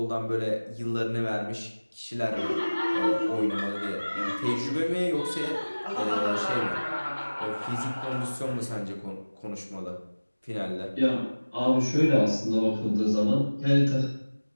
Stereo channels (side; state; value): both; inverted; correlation -1.00